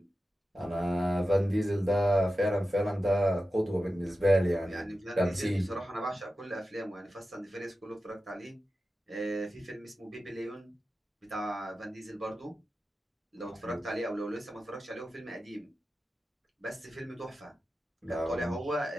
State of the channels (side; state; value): both; normal; correlation 0.93